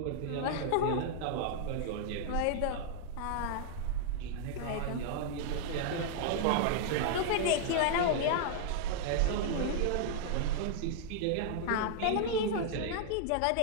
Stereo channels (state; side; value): different; both; correlation -0.01